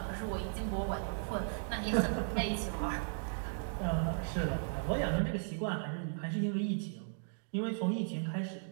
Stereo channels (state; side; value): silent; left; digital silence